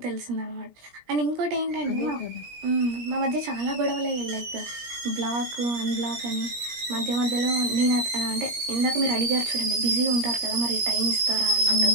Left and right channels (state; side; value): late; left; 17 ms